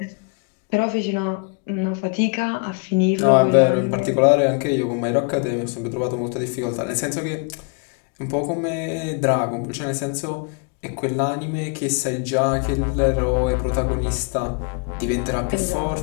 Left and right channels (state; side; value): quieter; right; 33.7 dB